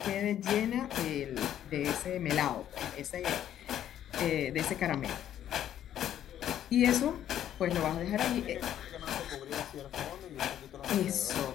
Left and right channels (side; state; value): right; quieter; 11.0 dB